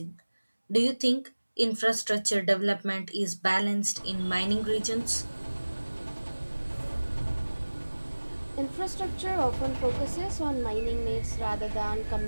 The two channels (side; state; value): both; inverted; correlation -1.00